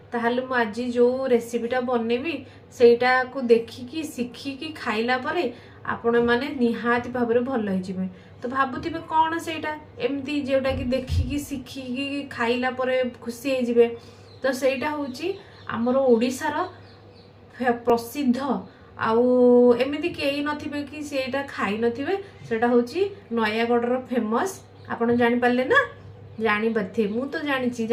ताहले मु आज जो रेसिपीटा बनैबी सेटा को देखिकी शिखिकी खाइला परे आपण माने निहाती भाव में भल हो तो भावुवे कौन से एमती जोटा कि देखिकी शिखिकी खाइला परे खुशी हो तो सेटा हूँ आमर ओडिशार प्रसिद्ध आउ एमती कई नथिबे कि सेटा खाई नथिबे सेटा होची नयागढ़ फेमस आपण जानि पारले ना जानि पारथे मु तो जानि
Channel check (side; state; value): both; identical; correlation 1.00